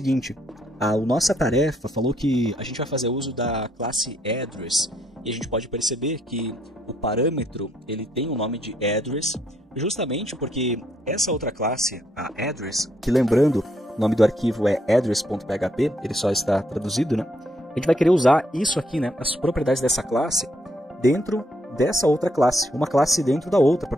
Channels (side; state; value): both; normal; correlation 0.73